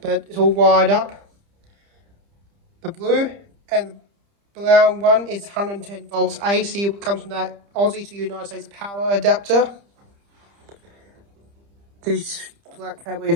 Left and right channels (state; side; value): late; left; 30 ms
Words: it's all wired up. The blue and the brown one is 110 volts AC. It comes from that Aussie to United States power adapter. This black cable